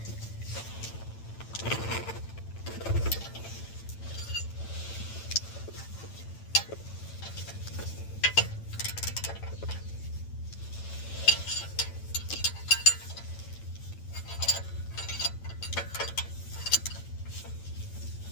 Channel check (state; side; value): late; right; 8.9 ms